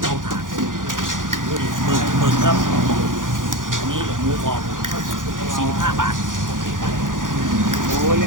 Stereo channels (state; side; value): late; left; 0.89 ms